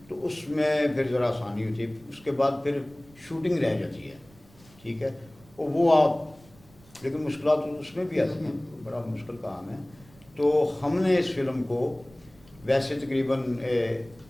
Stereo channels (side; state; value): right; noise; rumble, 26 dB below the sound